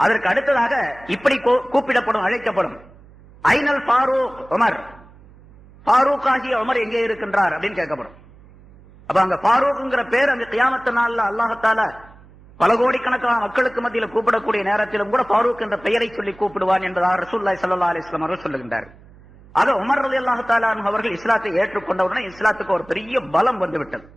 அடுத்ததாக இப்படி கூப்பிடப்படும், அழைக்கப்படும், ஐனல் ஃபாரூக் உமர், ஃபாரூக் ஆகிய உமர் எங்கே இருக்கின்றார் அப்படின்னு கேட்கப்படும். அப்ப அங்க ஃபாரூக்ங்கிற பேர் அந்த கியாமத்து நாள்ல அல்லாஹ் தஆலா பல கோடிக்கணக்கான மக்களுக்கு மத்தியில கூப்பிடக்கூடிய நேரத்திலும் கூட ஃபாரூக் என்ற பெயரை சொல்லி கூப்பிடுவான் என்பதாக ரசூலுல்லாஹி ஸல்லல்லாஹு அலைஹி வஸல்லம் அவர்கள் சொல்லுகின்றார்கள். ஆக உமர் ரலியல்லாஹு தஆலா அவர்கள் இஸ்லாத்தை ஏற்றுக்கொண்டவுடனே இஸ்லாத்துக்கு ஒரு பெரிய பலம் வந்துவிட்டது.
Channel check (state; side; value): noise; right; hum, 24 dB below the sound